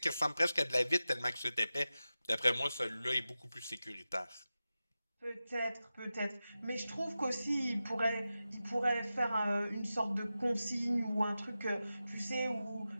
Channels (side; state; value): both; inverted; correlation -0.93